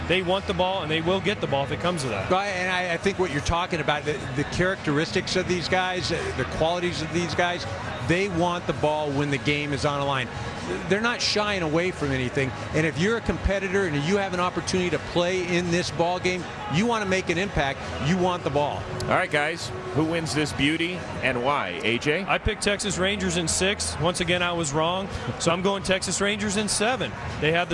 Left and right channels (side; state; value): both; identical; correlation 1.00